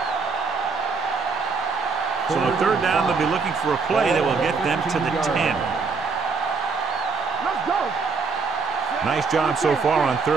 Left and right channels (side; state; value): left; quieter; 4.6 dB